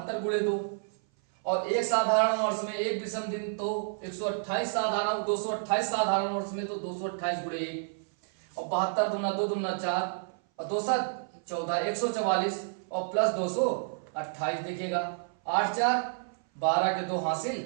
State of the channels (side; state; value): left; silent; 56 dB below the other